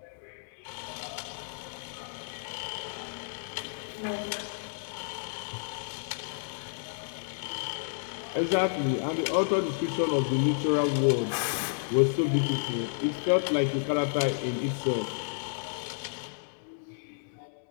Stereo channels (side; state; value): right; silent; digital silence